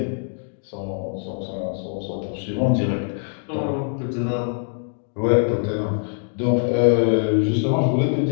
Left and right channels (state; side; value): silent; right; digital silence